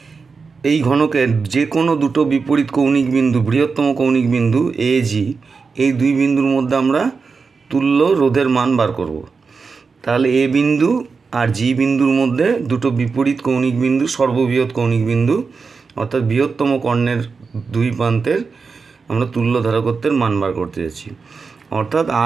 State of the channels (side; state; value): left; quieter; 4.9 dB